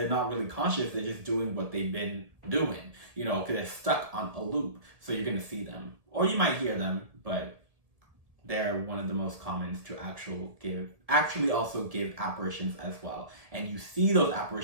not really conscious, they're just doing what they've been doing, you know, because they're stuck on a loop. So you're gonna see them, or you might hear them, but they're one of the most common to actually also give apparitions as well. And you see those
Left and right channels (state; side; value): late; left; 1.7 ms